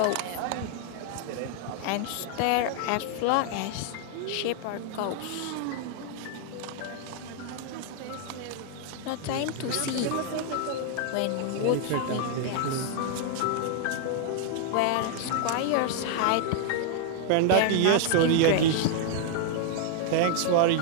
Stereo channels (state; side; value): different; both; correlation 0.00